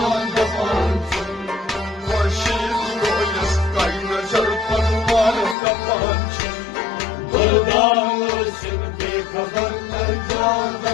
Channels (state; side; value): drops out; right; at 5.6 s